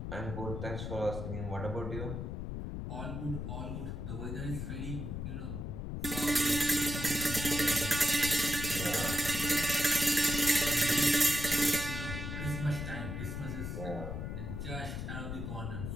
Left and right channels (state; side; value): noise; left; rumble, 5 dB below the sound